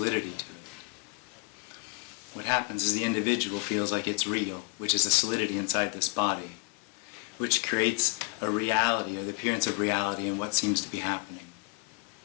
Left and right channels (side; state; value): right; quieter; 29.7 dB